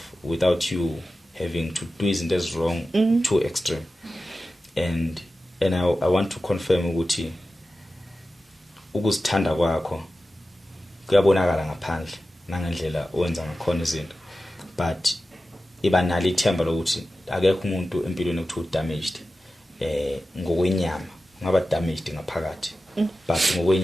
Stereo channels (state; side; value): normal; both; correlation 0.93